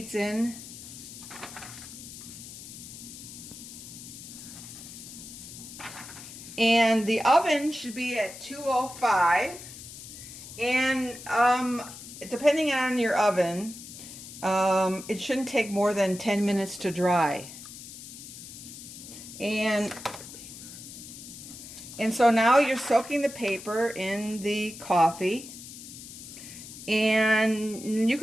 in. And the oven should be at 205, and depending on your oven, it shouldn't take more than 10 minutes to dry. And so now you're soaking the paper in the coffee, and you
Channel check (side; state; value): left; noise; hiss, 13 dB below the sound